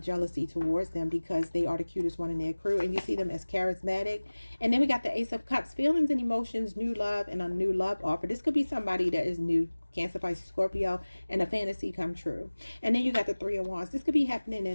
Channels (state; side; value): inverted; both; correlation -1.00